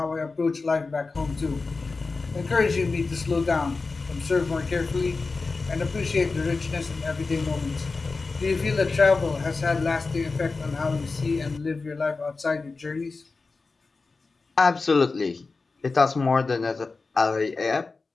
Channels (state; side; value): quieter; right; 4.0 dB